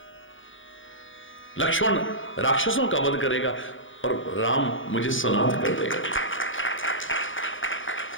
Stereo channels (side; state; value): right; late; 0.57 ms